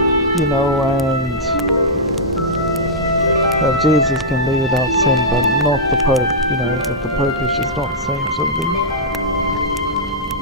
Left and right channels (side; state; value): both; normal; correlation -0.10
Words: You know, and Jesus can be without sin, but not the pope. You know, that the pope is just not the same sort of thing.